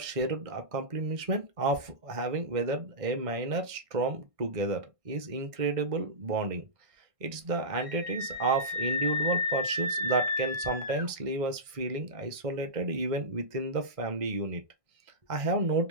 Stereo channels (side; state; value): left; late; 1.6 ms